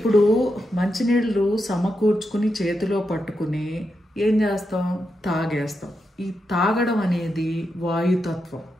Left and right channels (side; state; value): both; normal; correlation 0.86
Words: మంచినీళ్ళు సమకూర్చుకుని చేతిలో పట్టుకుని ఏం చేస్తాం? తాగేస్తాం. ఈ తాగడం అనేది వాయుతత్వం.